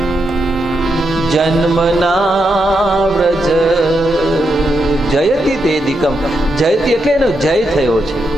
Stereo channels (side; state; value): both; normal; correlation 0.83